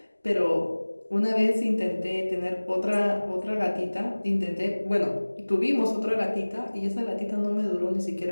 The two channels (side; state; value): both; inverted; correlation -1.00